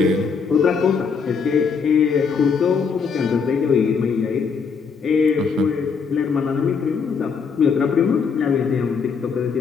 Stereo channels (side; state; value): right; quieter; 5.7 dB